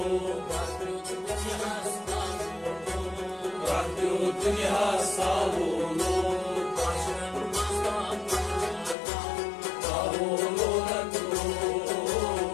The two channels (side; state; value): right; drops out; at 9.0 s